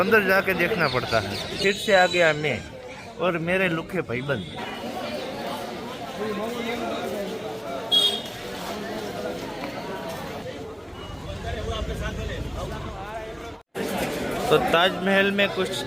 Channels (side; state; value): both; identical; correlation 1.00